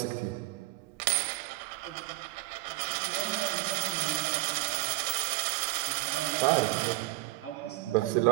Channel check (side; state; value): left; quieter; 19.6 dB